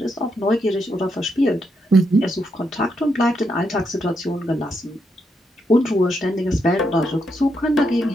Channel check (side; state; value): both; normal; correlation 0.80